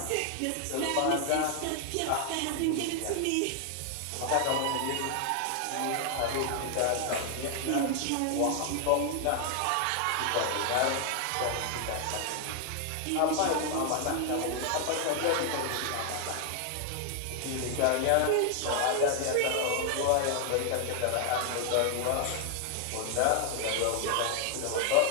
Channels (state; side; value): different; both; correlation 0.00